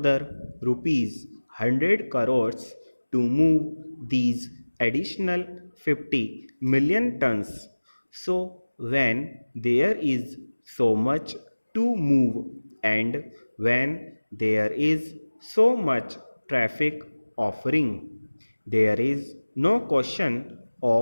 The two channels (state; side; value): inverted; both; correlation -1.00